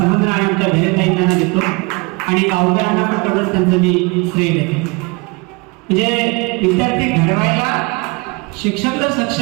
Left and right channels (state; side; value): quieter; left; 28.0 dB